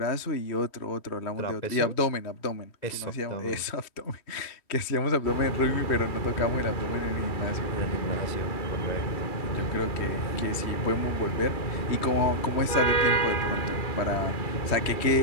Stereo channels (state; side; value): late; right; 3.1 ms